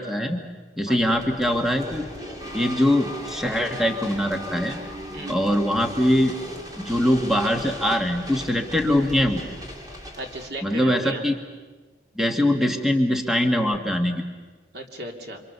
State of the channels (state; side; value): normal; both; correlation 0.85